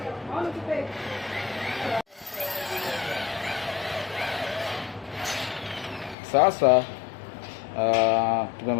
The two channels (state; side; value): drops out; right; at 6.2 s